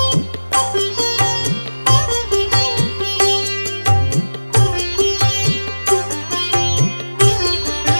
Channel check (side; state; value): both; inverted; correlation -1.00